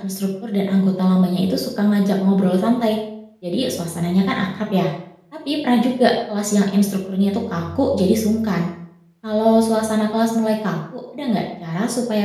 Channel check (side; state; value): both; identical; correlation 1.00